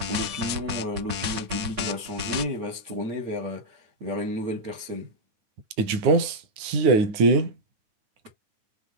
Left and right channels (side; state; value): left; late; 9.7 ms